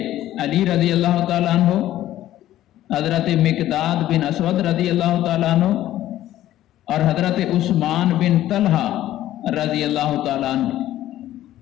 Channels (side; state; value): right; quieter; 13.6 dB